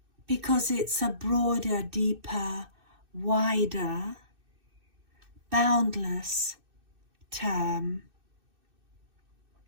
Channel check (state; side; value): late; left; 2.6 ms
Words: because it's a broader, deeper, wider, boundless term